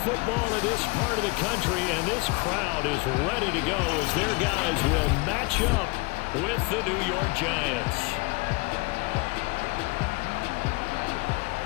in this part of the country, and this crowd is ready to go as their guys will match up with the New York Giants.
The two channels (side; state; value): right; quieter; 27.0 dB